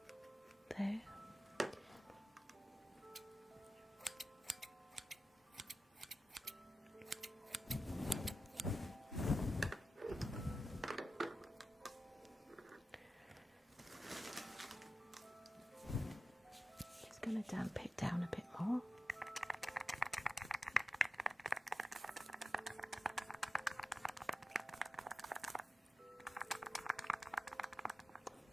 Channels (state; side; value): normal; both; correlation 0.92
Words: there. Just going to damp it down a bit more.